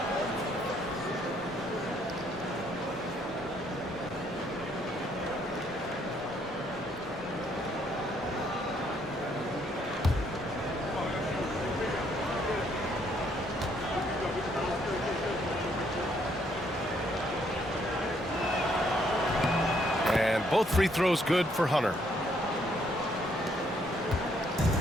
Both free throws good for Hunter.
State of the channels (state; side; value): normal; both; correlation 0.69